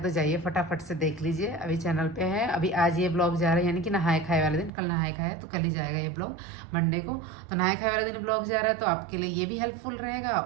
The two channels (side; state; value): left; drops out; at 4.7 s